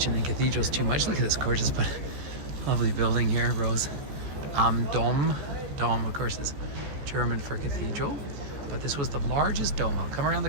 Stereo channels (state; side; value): late; left; 14 ms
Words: and cathedrals too much. Look at this gorgeous but lovely building here, Rose. Dom. Dom, of course, is German for cathedral. But this was the largest dome. I'll come around the